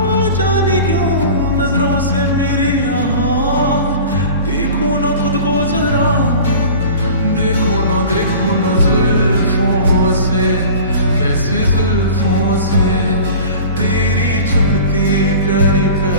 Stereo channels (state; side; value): inverted; both; correlation -0.40